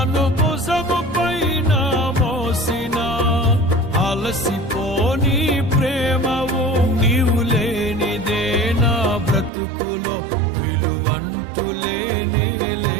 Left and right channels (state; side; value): drops out; left; at 9.5 s